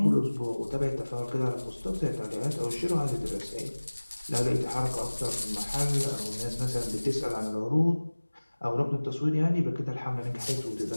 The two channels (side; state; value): both; inverted; correlation -1.00